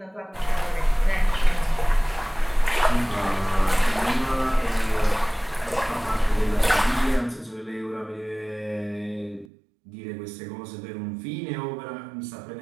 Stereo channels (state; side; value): drops out; left; at 9.5 s